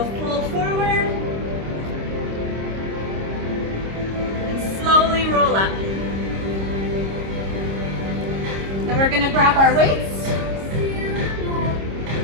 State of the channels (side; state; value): left; late; 26 ms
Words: fold forward. And slowly roll up. Then we're going to grab our weights.